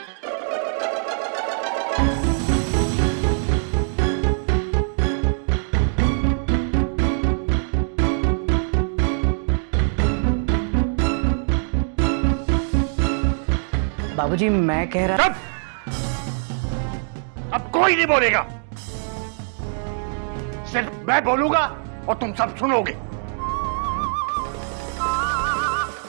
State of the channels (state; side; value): silent; left; digital silence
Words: बाबूजी, मैं कह रहा। चुप! अब कोई नहीं बोलेगा, सिर्फ मैं बोलूंगा और तुम सब सुनोगे।